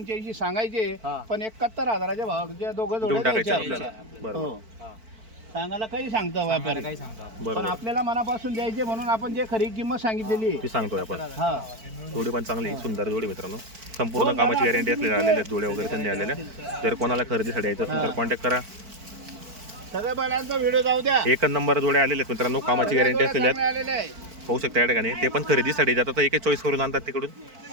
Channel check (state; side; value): late; left; 4.5 ms